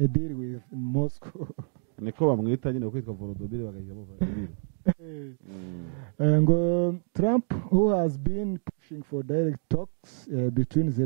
deal with Moscow. Niko bamwita nyine kwitwa Volodymyr bagahiramo Vladimir. Ngo Trump, who has been pushing for direct talks between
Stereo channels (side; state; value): left; silent; 59 dB below the other